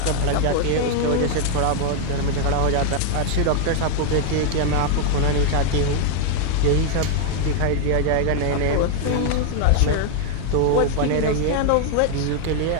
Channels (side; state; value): both; different; correlation 0.00